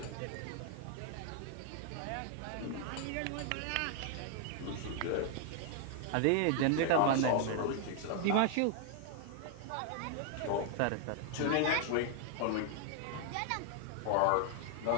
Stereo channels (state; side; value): different; both; correlation 0.00